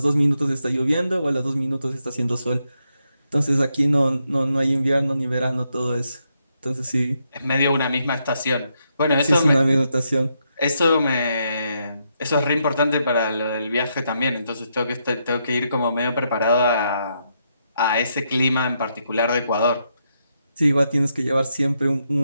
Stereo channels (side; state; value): both; inverted; correlation -0.80